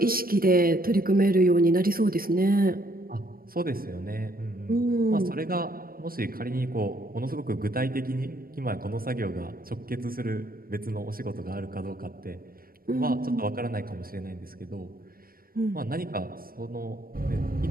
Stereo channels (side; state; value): left; late; 0.43 ms